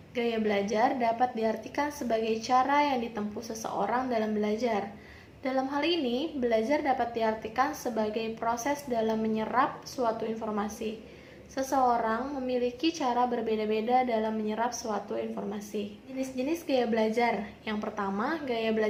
Gaya belajar dapat diartikan sebagai cara yang ditempuh seseorang dalam belajar. Dalam hal ini, belajar dapat diartikan sebagai proses dalam menyerap suatu informasi. Seseorang memiliki cara berbeda-beda dalam menyerap suatu informasi. Jenis-jenis gaya belajar. Yang pertama, gaya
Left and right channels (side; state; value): both; identical; correlation 1.00